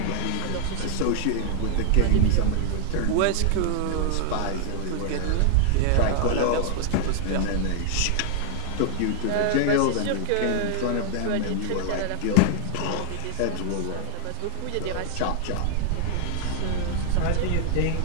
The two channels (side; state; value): both; different; correlation 0.00